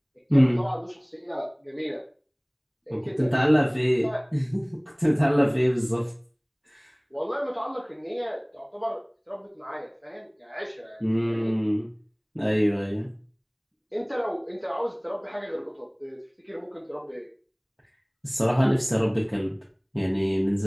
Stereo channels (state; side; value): identical; both; correlation 1.00